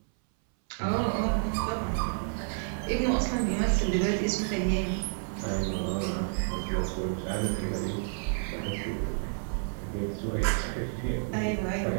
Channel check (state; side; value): silent; left; 58 dB below the other